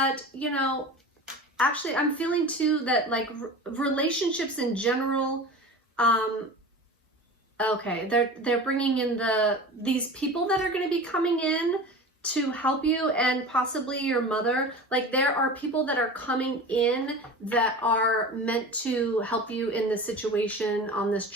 you know, actually, I'm feeling too that like relationships in general, okay, they're bringing in these people that are going to be coming in to help you, and possibly your mother. Like there are people that are coming in that are meant to help you in this situation, on this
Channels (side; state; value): both; normal; correlation 0.33